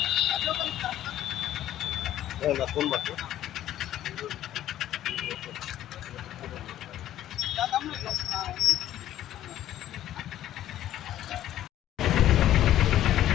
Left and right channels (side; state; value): right; quieter; 12.6 dB